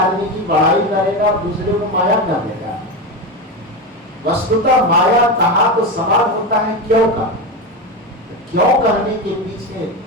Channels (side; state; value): both; normal; correlation 0.17